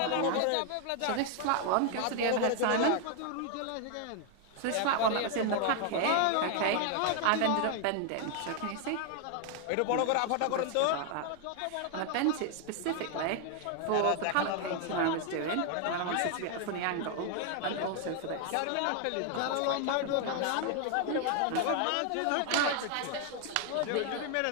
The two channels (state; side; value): different; both; correlation 0.00